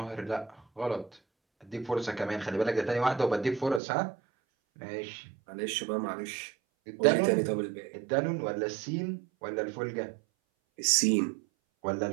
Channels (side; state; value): left; drops out; at 3.8 s